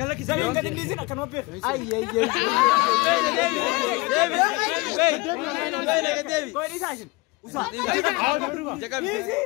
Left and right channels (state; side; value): quieter; right; 24.3 dB